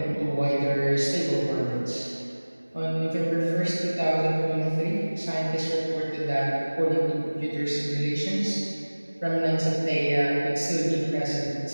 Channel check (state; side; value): inverted; both; correlation -1.00